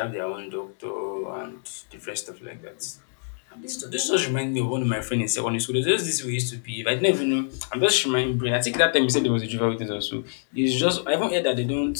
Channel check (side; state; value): right; silent; digital silence